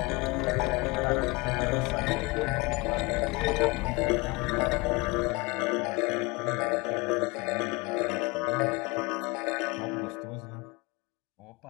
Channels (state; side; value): quieter; right; 25.0 dB